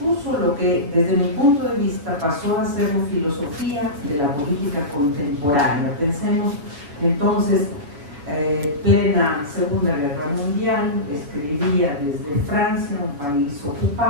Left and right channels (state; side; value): late; left; 7.1 ms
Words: lo que, desde mi punto de vista, pasó a ser la filosofía de la política contemporánea. Pensemos entonces, plena Segunda Guerra Mundial, escribía desde Francia, un país